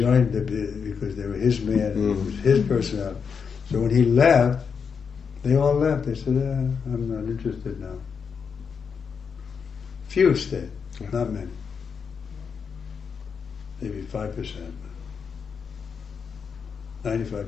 because they were his man and it was his personality. So when he left, they all left. They said, I'm not interested now. Few stayed, not many. Maybe 5%. 95%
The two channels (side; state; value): right; quieter; 6.2 dB